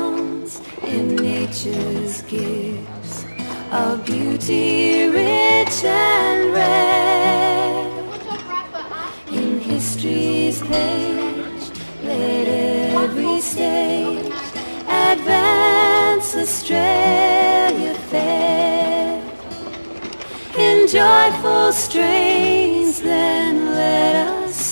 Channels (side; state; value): both; inverted; correlation -1.00